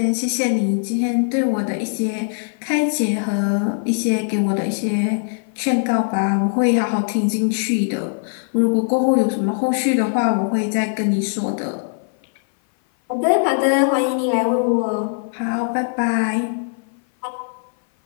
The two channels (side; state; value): right; silent; 57 dB below the other